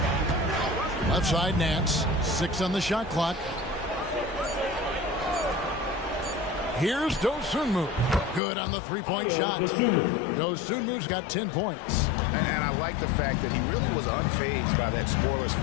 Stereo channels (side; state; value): right; drops out; at 8.4 s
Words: Left side Nance. 6 on the shot clock. Here's Dosunmu. Good on the three-point shot. Dosunmu's got 10 points. And I like the fact that he really was unfazed by that scoreless